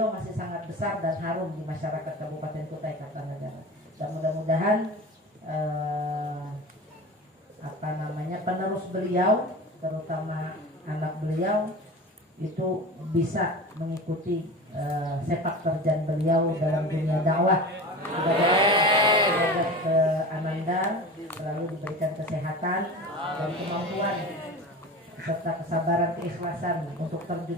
masih sangat besar dan harum di masyarakat Kabupaten Kutai Kartanegara. Dan mudah-mudahan penerus beliau, terutama anak beliau itu bisa mengikuti sepak terjang beliau dalam dunia dakwah. Semoga ke Ananda selalu diberikan kesehatan dan kemampuan serta kesabaran, keikhlasan untuk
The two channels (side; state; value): both; normal; correlation 0.33